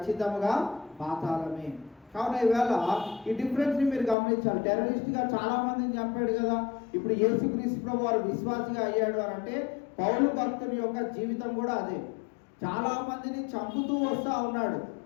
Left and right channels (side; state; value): right; drops out; at 4.2 s